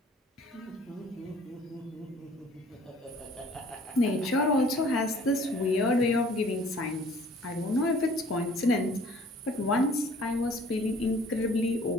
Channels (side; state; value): both; normal; correlation 0.54